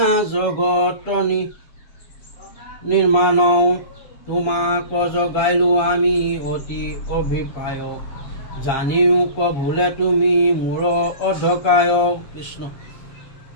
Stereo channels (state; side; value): late; right; 7.4 ms